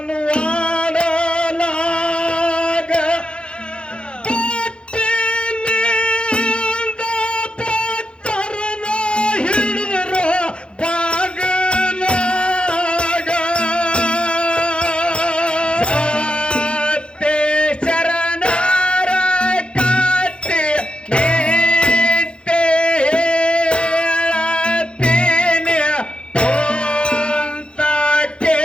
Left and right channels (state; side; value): late; right; 0.056 ms